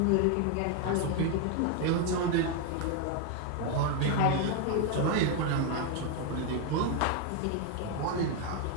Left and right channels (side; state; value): both; different; correlation 0.01